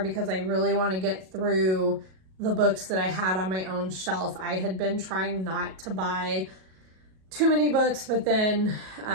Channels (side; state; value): left; late; 37 ms